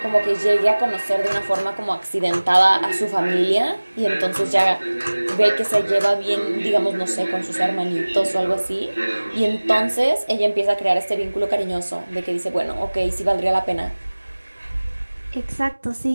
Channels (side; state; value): both; inverted; correlation -1.00